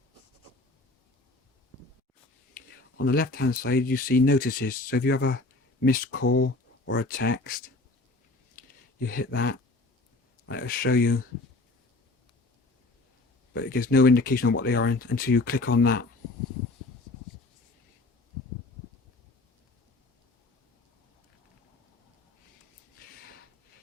On the left hand side you see notices, so if you have a missed call or a text, you hit that and it'll show you, but it gives no indication of what they are until you click on that.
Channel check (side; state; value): right; quieter; 3.2 dB